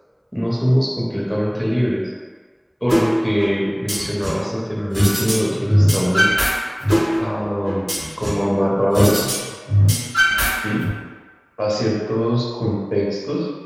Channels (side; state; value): both; identical; correlation 1.00